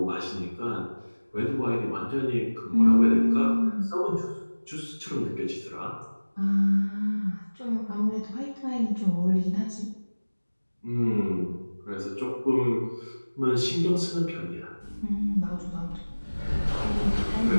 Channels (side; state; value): both; inverted; correlation -1.00